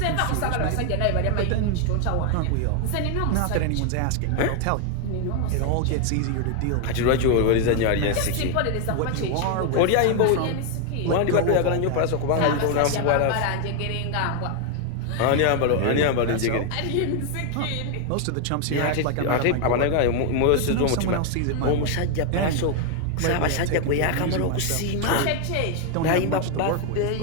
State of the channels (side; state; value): both; different; correlation 0.00